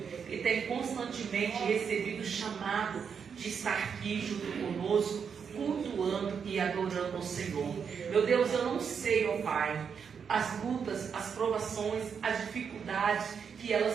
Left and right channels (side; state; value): left; quieter; 6.7 dB